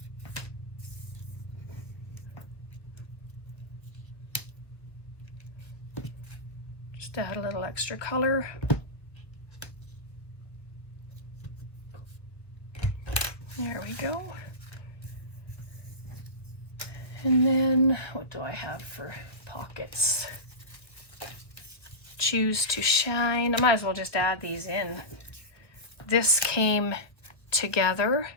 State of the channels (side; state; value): right; late; 1.4 ms